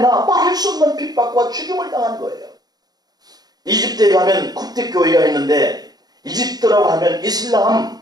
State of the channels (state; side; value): late; left; 0.19 ms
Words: 말할 수 없는 핍박과 죽임을 당한 거예요. 이집트에 가면 콥틱 교회가 있는데, 이집트라고 하면